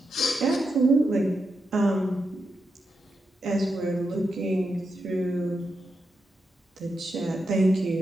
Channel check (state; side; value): normal; both; correlation 0.86